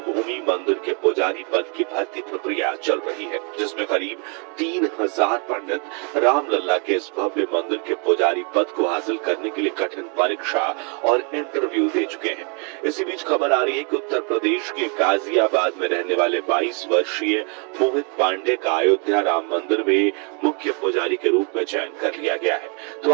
मंदिर के पुजारी पद की भर्ती प्रक्रिया चल रही है, जिसमें करीब 3000 पंडित रामलला के इस भव्य मंदिर के पुजारी पद को हासिल करने के लिए कठिन परीक्षा और इंटरव्यू दे चुके हैं। इसी बीच खबर आ रही है कि उत्तर प्रदेश के गाजियाबाद में रहने वाले 22 वर्षीय मोहित पांडे का अयोध्या राम मंदिर में मुख्य पुजारी के रूप में चयन कर लिया गया है। तो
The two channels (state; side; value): quieter; left; 36.2 dB